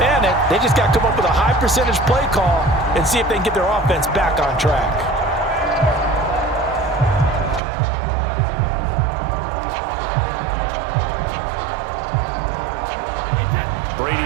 They just got to come up with a high percentage play call and see if they can get their offense back on track.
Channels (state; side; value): drops out; left; at 7.6 s